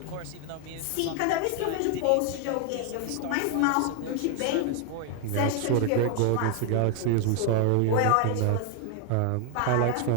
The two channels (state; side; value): different; both; correlation 0.00